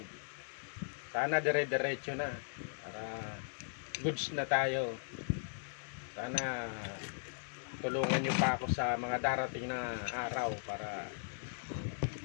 Sana dire-diretso na para goods na tayo. Sana tulungan nyo pa ako sa mga darating na araw para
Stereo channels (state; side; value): silent; right; 52 dB below the other